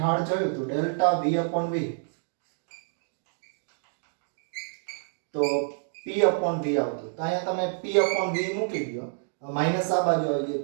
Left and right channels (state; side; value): silent; left; digital silence